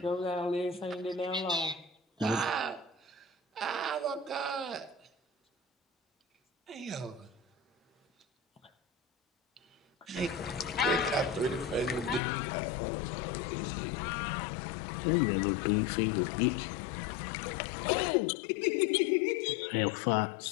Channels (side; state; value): right; drops out; at 12.2 s